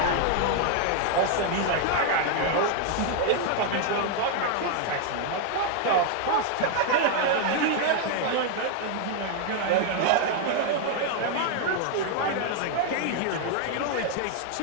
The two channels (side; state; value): both; different; correlation 0.00